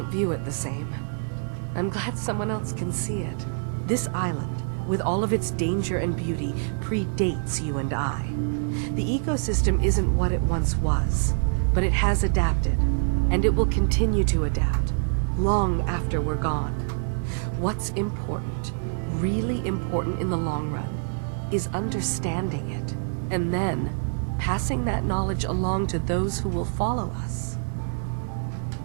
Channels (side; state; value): left; silent; digital silence